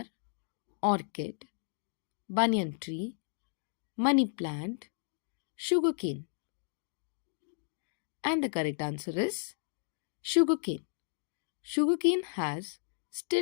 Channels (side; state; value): right; silent; digital silence